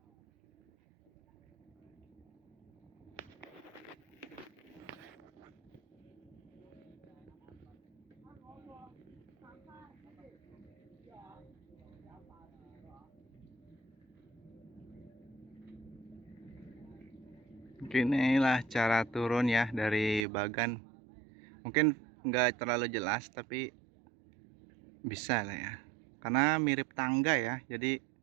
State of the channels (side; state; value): left; drops out; at 20.2 s